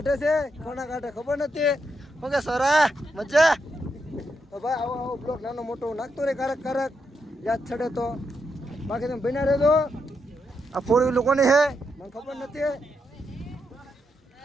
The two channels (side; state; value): both; normal; correlation 0.82